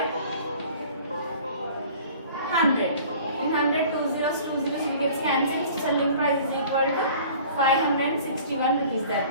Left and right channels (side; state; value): both; inverted; correlation -0.47